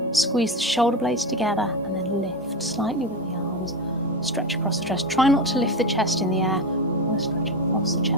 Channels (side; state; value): both; normal; correlation 0.18